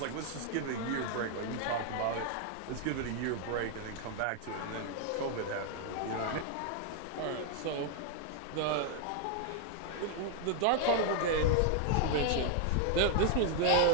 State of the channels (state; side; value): different; both; correlation 0.00